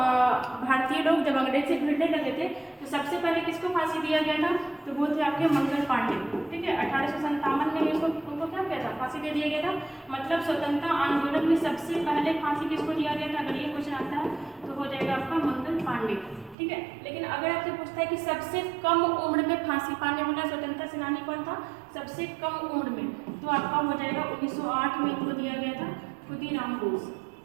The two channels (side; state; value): left; drops out; at 16.6 s